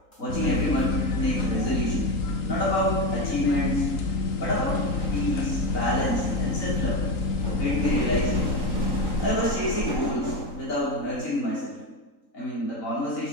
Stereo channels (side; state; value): right; late; 3.8 ms